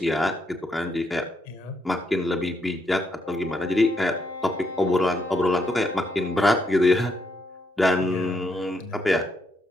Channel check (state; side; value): normal; both; correlation 0.77